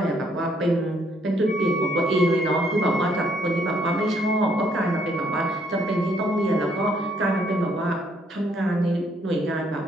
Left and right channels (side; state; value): both; normal; correlation 0.68